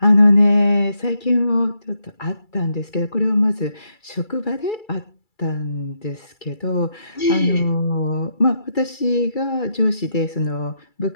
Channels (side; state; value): right; late; 2.3 ms